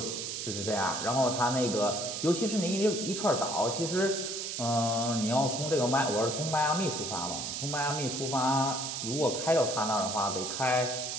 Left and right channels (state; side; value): noise; right; hiss, 4 dB below the sound